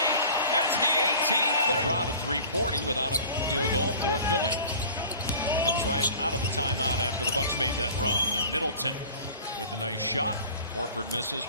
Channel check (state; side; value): inverted; both; correlation -0.43